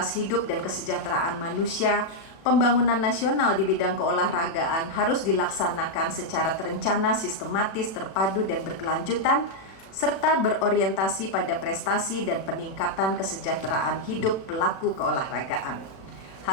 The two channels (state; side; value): late; right; 36 ms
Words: hidup dan kesejahteraan manusia, pembangunan nasional di bidang keolahragaan harus dilaksanakan secara terencana, sistematis, terpadu, dan berkelanjutan, serta berorientasi pada prestasi dan peningkatan kesejahteraan hidup pelaku keolahragaan.